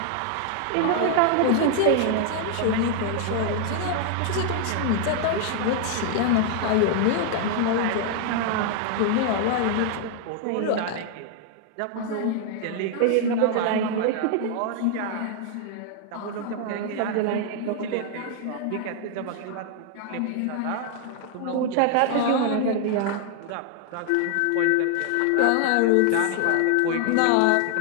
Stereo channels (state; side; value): different; both; correlation 0.00